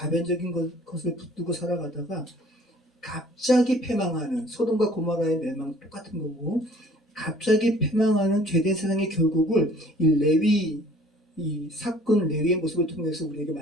것을 붙들고 살아가다가 갑자기 패망하는 소돔과 고모라의 멸망 똑같은 거고, 갑자기 패망하는 죄된 세상의 결국을 이 사건 레위의 모습을 통해서 우리에게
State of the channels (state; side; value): normal; both; correlation 0.53